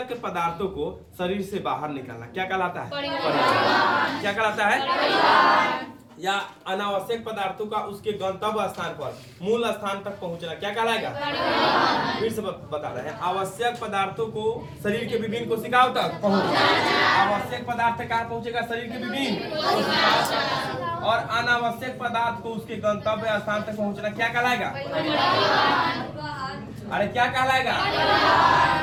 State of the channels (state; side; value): identical; both; correlation 1.00